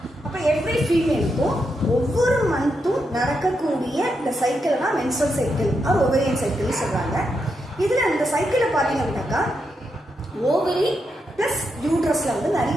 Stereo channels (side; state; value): both; normal; correlation 0.83